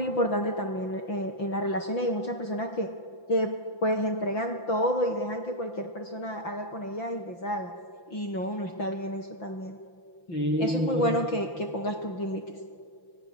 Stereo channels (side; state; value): right; late; 5.9 ms